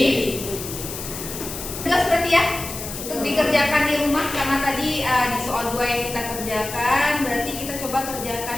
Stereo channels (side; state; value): left; noise; hiss, 8 dB below the sound